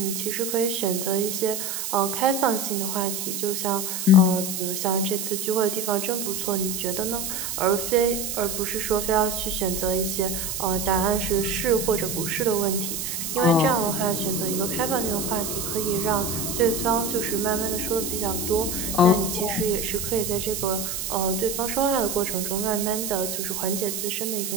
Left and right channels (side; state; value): right; noise; hiss, 4 dB below the sound